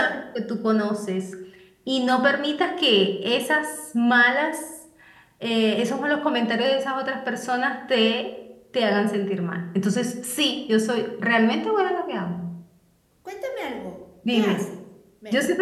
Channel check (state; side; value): identical; both; correlation 1.00